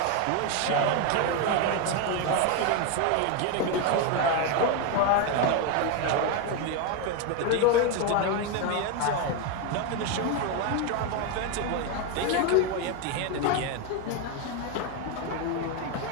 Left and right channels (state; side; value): different; both; correlation 0.02